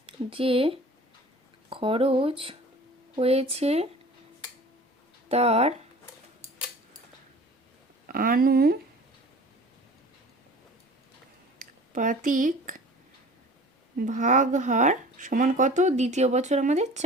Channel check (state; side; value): normal; both; correlation 0.43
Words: যে খরচ হয়েছে তার আনুপাতিক ভাগহার সমান কত? দ্বিতীয় বছর আমাদের